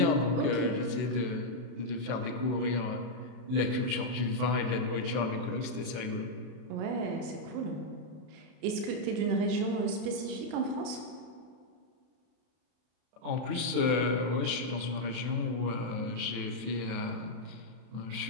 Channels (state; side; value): late; left; 32 ms